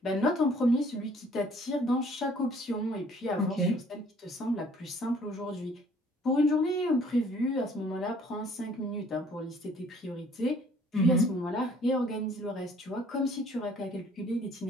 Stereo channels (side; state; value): both; normal; correlation 0.58